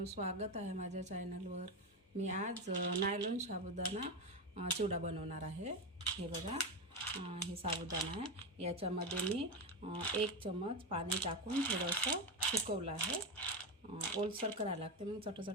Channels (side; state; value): both; normal; correlation 0.14